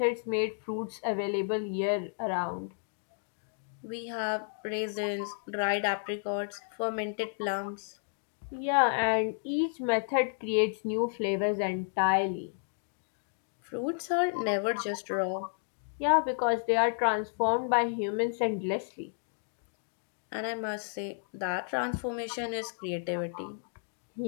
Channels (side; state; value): right; silent; digital silence